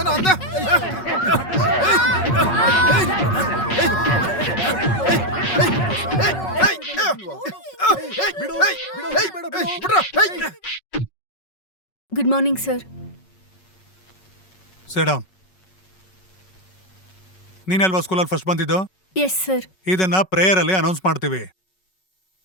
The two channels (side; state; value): right; late; 5.4 ms